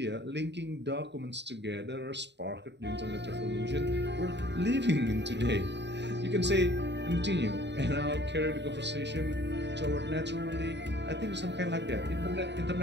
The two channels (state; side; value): late; left; 0.51 ms